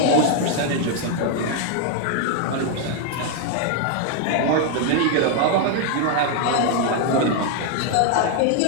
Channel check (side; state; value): both; different; correlation 0.00